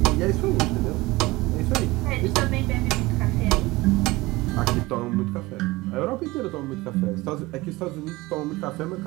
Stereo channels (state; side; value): quieter; left; 20.8 dB